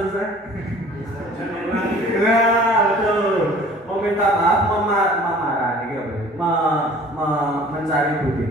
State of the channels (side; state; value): both; normal; correlation 0.49